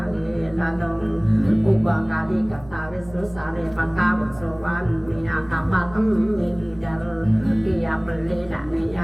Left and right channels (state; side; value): noise; right; hum, 21 dB below the sound